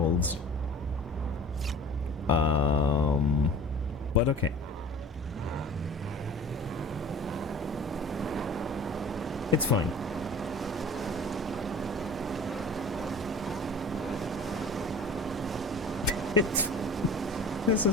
But okay. It's fine. This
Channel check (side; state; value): both; normal; correlation 0.43